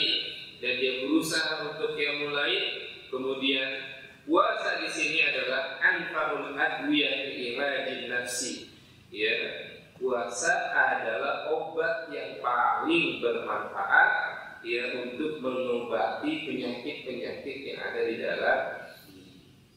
dan dia berusaha untuk qiyamul lail. Kemudian puasa di sini adalah anfarul adwiyah li iradin nafsi, ya puasa adalah obat yang paling bermanfaat ya untuk mengobati penyakit-penyakit yang ada di dalam diri.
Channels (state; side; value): identical; both; correlation 1.00